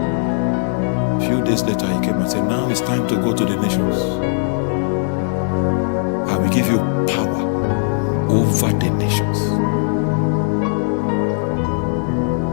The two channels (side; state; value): right; silent; digital silence